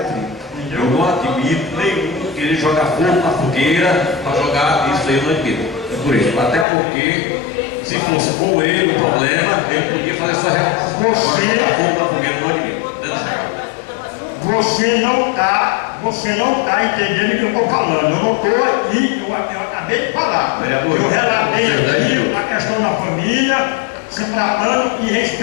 Eu não admito nenhum querer jogar fogo na fogueira para jogar isso aí, eu não admito. É por isso. Até porque, se fosse com ele o problema, ele podia fazer essa reação. Jogar fogo na fogueira, eu não admito. Você não está entendendo o que eu estou falando. Eu não estou aqui, eu acabei de falar. Eu relatei aqui a questão da família, se tratando e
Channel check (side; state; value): right; drops out; at 6.7 s